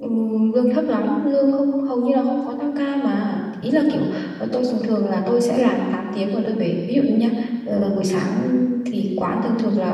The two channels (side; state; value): both; identical; correlation 1.00